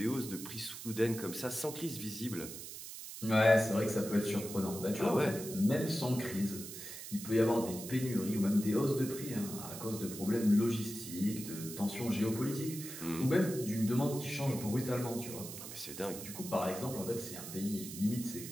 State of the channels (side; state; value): right; noise; hiss, 10 dB below the sound